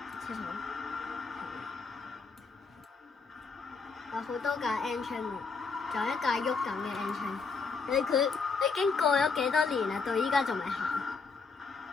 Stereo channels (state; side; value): quieter; right; 4.8 dB